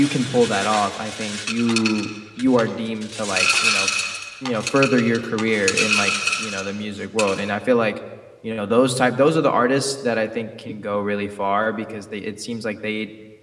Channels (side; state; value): both; identical; correlation 1.00